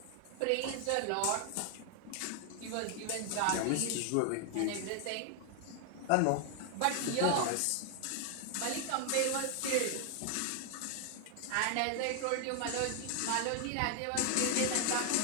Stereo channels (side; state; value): both; different; correlation 0.00